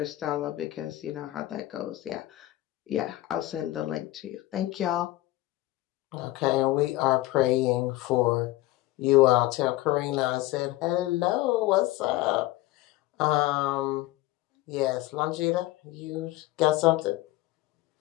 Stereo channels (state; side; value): quieter; right; 17.3 dB